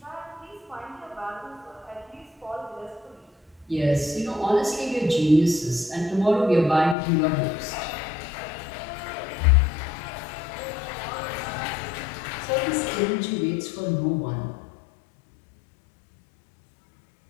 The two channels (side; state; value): right; drops out; at 7.0 s